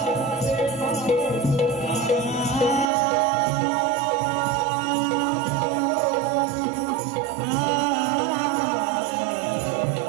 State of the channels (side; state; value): left; drops out; at 2.9 s